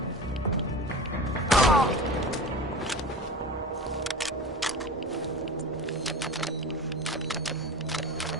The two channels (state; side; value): normal; both; correlation 0.32